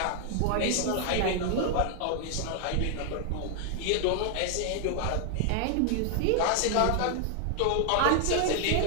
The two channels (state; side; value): different; both; correlation 0.00